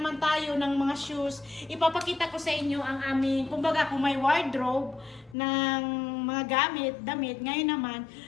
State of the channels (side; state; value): right; drops out; at 5.4 s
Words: tayo ng mga shoes, ipapakita ko sa inyo ang aming, kumbaga kung may wardrobe ng mga damit, ngayon naman,